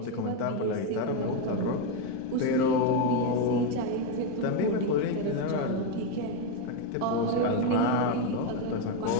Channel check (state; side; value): different; both; correlation 0.03